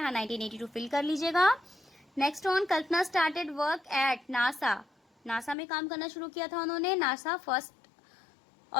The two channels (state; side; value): drops out; right; at 5.6 s